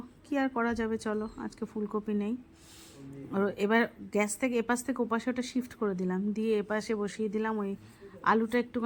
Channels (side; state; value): both; identical; correlation 1.00